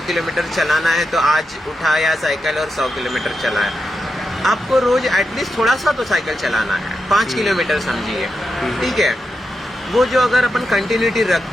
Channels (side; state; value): both; normal; correlation 0.88